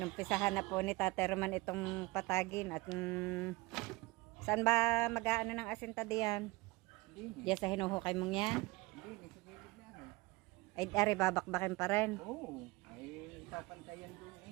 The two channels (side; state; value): left; quieter; 22.9 dB